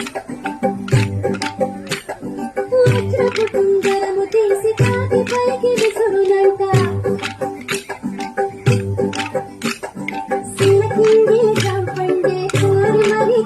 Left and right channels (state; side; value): identical; both; correlation 1.00